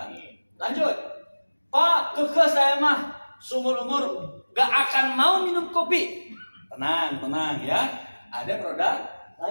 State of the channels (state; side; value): inverted; both; correlation -1.00